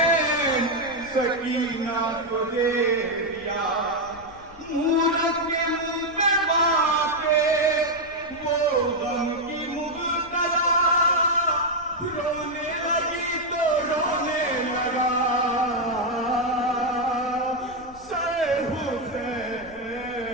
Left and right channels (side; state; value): left; noise; rumble, 22 dB below the sound